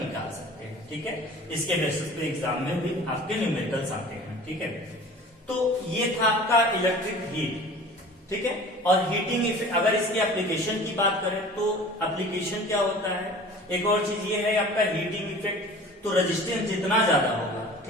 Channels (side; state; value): both; normal; correlation 0.42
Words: सकते हैं। ठीक है, इसके बेसिस पे एग्जाम में भी आपके न्यूमेरिकल्स आते हैं। ठीक है, तो ये था आपका इलेक्ट्रिक हीट। ठीक है, और हीटिंग इफेक्ट, अगर इसकी एप्लीकेशन की बात करें तो एप्लीकेशन क्या होता है, एक और चीज ये है आपका हीटिंग इफेक्ट, तो रेजिस्टेंस जितना ज्यादा होगा,